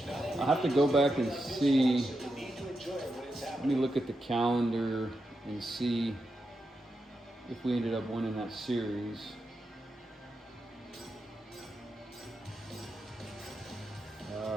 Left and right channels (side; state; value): both; normal; correlation 0.87